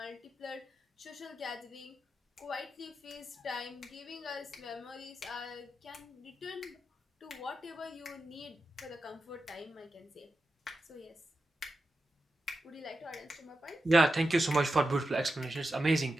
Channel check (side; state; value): both; normal; correlation 0.90